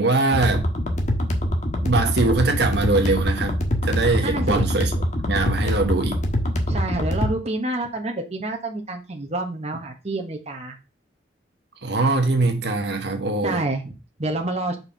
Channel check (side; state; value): both; normal; correlation 0.54